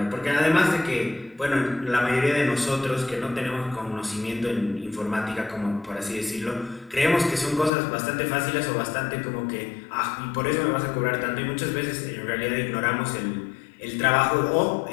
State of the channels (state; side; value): drops out; right; at 7.7 s